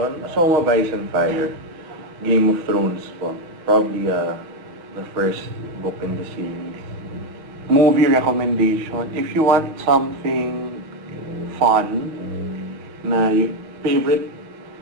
A Song of Ice and Fire, Game of Thrones po. Probably the first book in the series. Movie recommendation, if you want something fun, na favorite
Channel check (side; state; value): left; late; 6.3 ms